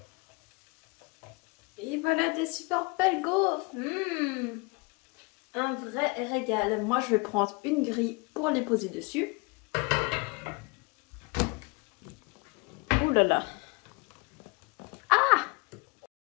Et voilà des super belles gaufres. Un vrai régal. Moi, je vais prendre une grille pour les poser dessus. Ouh là là. Ah!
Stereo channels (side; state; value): right; quieter; 29.0 dB